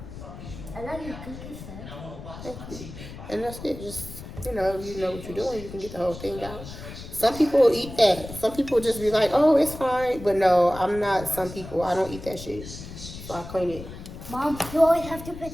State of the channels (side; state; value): left; noise; rumble, 12 dB below the sound